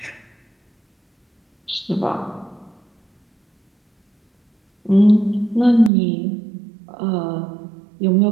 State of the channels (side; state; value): left; drops out; at 5.9 s